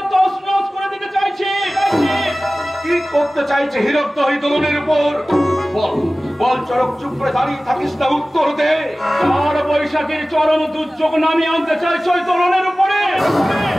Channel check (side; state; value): both; normal; correlation 0.97